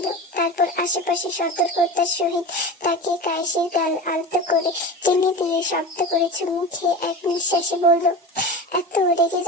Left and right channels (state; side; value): normal; both; correlation 0.31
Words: তারপর আশেপাশে সতর্কতার সহিত তাকে কায়েসির গাল আলতো করে টেনে দিয়ে শব্দ করে চুমু খেয়ে এক নিঃশ্বাসে বলল, এত রেগে